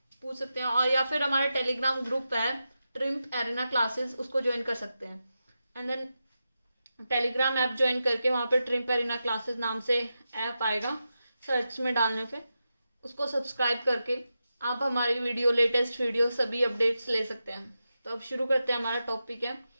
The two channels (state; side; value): inverted; both; correlation -0.89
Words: पूछ सकते हैं, और या फिर हमारे टेलीग्राम ग्रुप है ट्रिम्प एरिना क्लासेस, उसको ज्वाइन कर सकते हैं। And then Telegram app join करके वहाँ पे ट्रिम्प एरिना क्लासेस नाम से ऐप आएगा, सर्च में डालने पे उसको सब्सक्राइब करके आप हमारी लेटेस्ट वीडियो सभी अपडेट्स ले सकते हैं। तो अब शुरू करते हैं। हमारा टॉपिक है